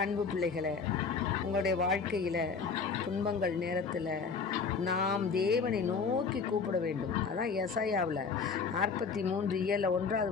அன்பு பிள்ளைகளை, உங்களுடைய வாழ்க்கையில் துன்பங்கள் நேரத்தில் நாம் தேவனை நோக்கி கூப்பிட வேண்டும். அதான் எசாயாவில் 43:1வது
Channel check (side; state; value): right; quieter; 5.3 dB